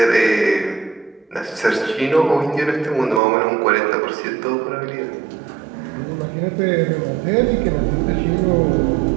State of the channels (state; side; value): drops out; left; at 3.2 s